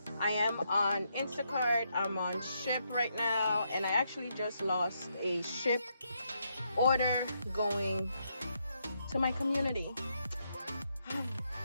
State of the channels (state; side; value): inverted; both; correlation -0.78